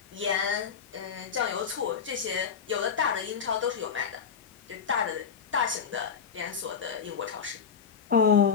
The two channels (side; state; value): right; quieter; 6.8 dB